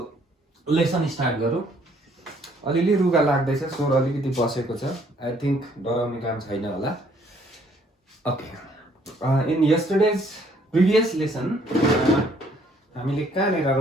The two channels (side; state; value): both; normal; correlation 0.64